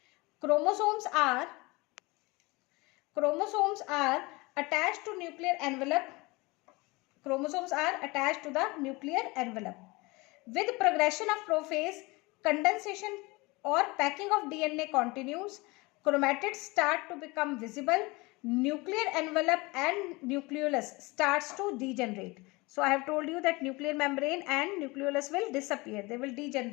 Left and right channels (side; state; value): right; quieter; 24.2 dB